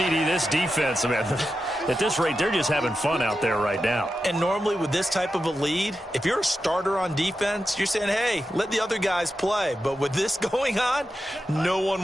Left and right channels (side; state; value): both; normal; correlation 0.90